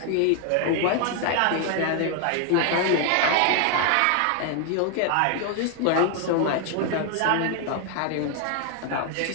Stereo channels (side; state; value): both; different; correlation 0.00